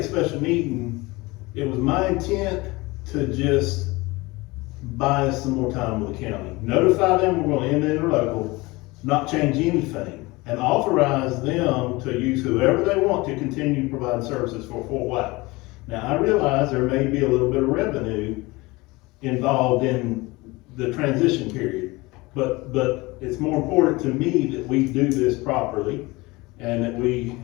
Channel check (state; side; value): quieter; right; 22.6 dB